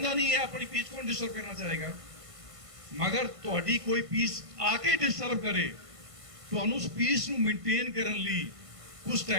ਨਹੀਂ ਹੈ ਆਪਣੀ ਪੀਸ ਕੌਣ ਡਿਸਟਰਬ ਕਰਨਾ ਚਾਹੇਗਾ। ਮਗਰ ਤੁਹਾਡੀ ਕੋਈ ਪੀਸ ਆ ਕੇ ਡਿਸਟਰਬ ਕਰੇ, ਤੁਹਾਨੂੰ ਉਸ ਪੀਸ ਨੂੰ ਮੇਨਟੇਨ ਕਰਨ ਲਈ ਕੁਝ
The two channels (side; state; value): left; late; 1.5 ms